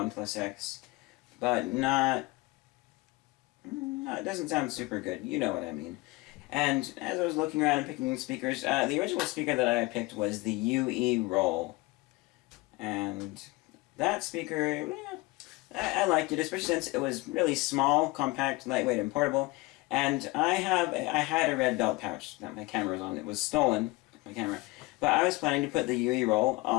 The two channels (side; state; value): right; quieter; 22.7 dB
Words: X, but it doesn't sound super good, you know what I mean. And as I was looking around and picking speakers, the original speaker that I picked was the UE Roll. And that speaker, I liked it, especially since it was really small, compact, lightweight, and portable. And I had a red belt pouch that my camera was on. It was stolen, my camera. But I was planning to put the UE Roll